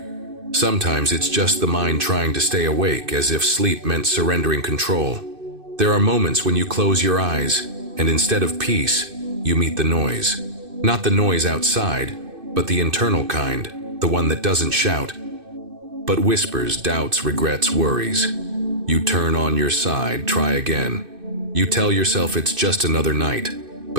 Sometimes it's just the mind trying to stay awake, as if sleep meant surrendering control. There are moments when you close your eyes, and instead of peace, you meet the noise. Not the noise outside, but the internal kind, the one that doesn't shout, but whispers, doubts, regrets, worries. You turn on your side, try again. You tell yourself it's just another night,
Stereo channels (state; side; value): late; left; 2.6 ms